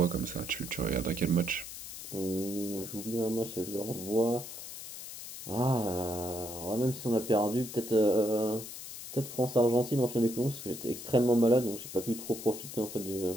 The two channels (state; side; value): noise; left; hiss, 10 dB below the sound